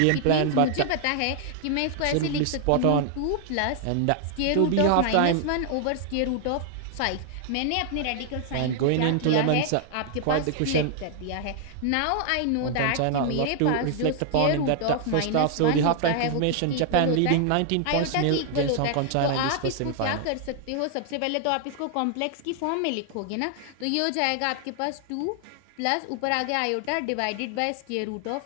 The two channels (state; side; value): different; both; correlation 0.00